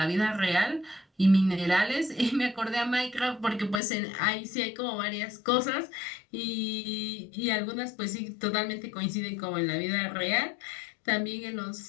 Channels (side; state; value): right; drops out; at 3.8 s